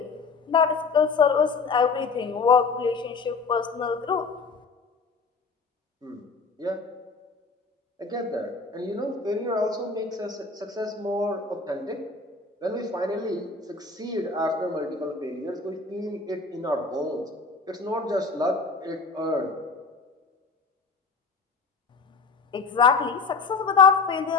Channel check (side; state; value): right; quieter; 4.4 dB